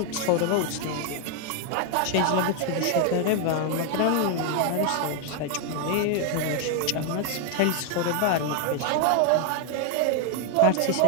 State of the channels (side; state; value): both; different; correlation 0.00